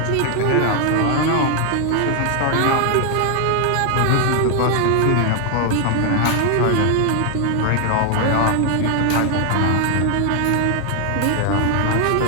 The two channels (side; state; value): both; different; correlation 0.00